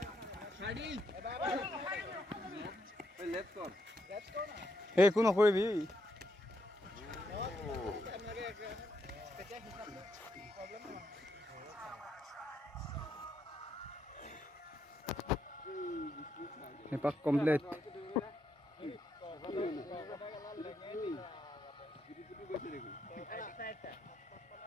একো নকৰিবি এপাক complete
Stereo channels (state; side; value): normal; both; correlation 0.78